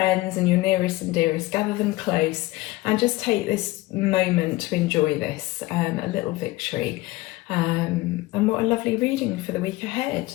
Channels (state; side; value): quieter; right; 19.1 dB